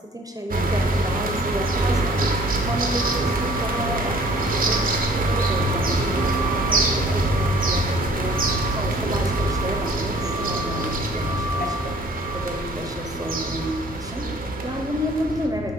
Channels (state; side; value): normal; both; correlation 0.54